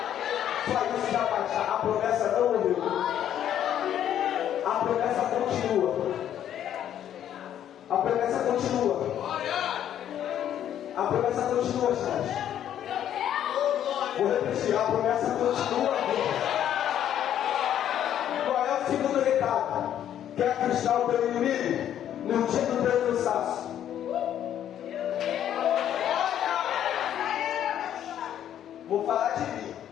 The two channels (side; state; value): right; quieter; 10.5 dB